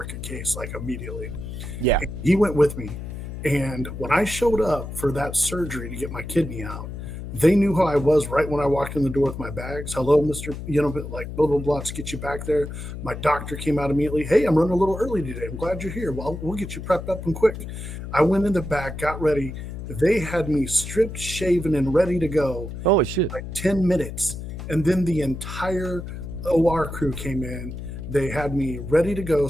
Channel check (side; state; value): left; noise; hum, 8 dB below the sound